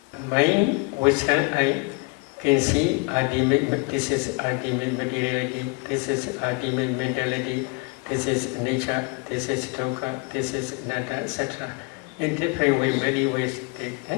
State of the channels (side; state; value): right; quieter; 29.7 dB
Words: Mind, wisdom, I can see ultimate, this is ultimate materiality, this is ultimate mentality, this is nature, this is dukkha, this is anatta, etc. In different ways, many ways they